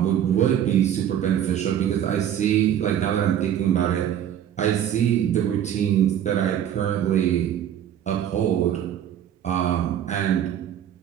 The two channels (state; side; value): quieter; left; 10.1 dB